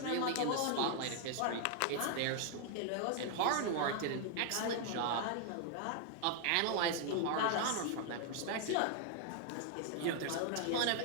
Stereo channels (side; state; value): both; different; correlation 0.00